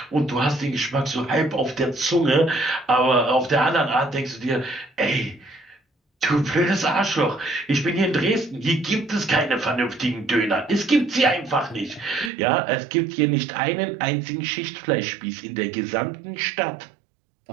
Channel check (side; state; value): left; drops out; at 12.3 s